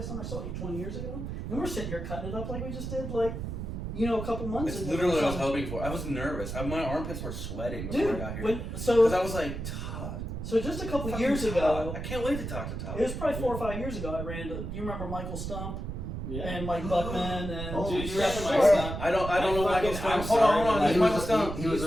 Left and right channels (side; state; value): right; noise; rumble, 6 dB below the sound